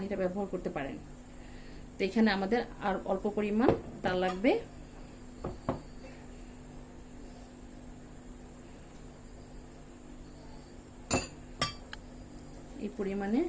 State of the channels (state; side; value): identical; both; correlation 1.00